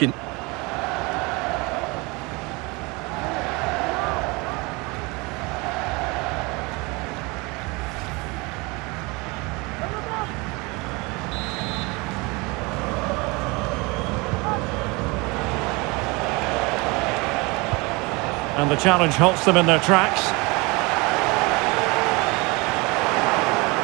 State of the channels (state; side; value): quieter; left; 26.0 dB